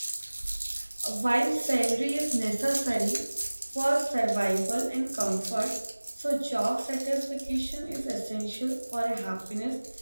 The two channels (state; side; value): inverted; both; correlation -1.00